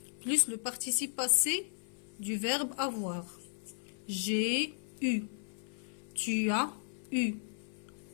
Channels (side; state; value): right; silent; 54 dB below the other